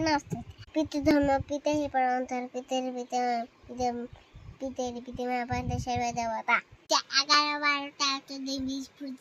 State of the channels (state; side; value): identical; both; correlation 1.00